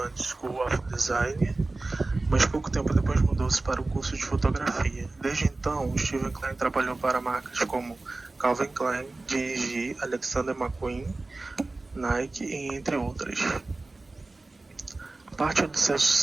School of Design, mas pouco tempo depois mudou-se para o curso de fotografia. Desde então, Steven Klein trabalhou para marcas como Calvin Klein, G&G, Alexander McQueen, Nike e entre outras. Parte do seu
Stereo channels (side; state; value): left; quieter; 3.2 dB